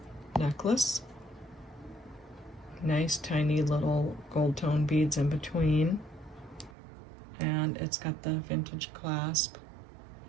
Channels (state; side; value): drops out; left; at 6.8 s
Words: necklace. Nice tiny little gold tone beads in between, and it's got the vintage clasp.